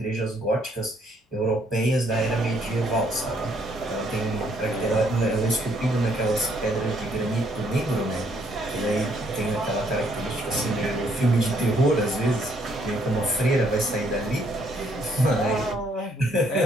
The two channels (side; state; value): both; normal; correlation 0.68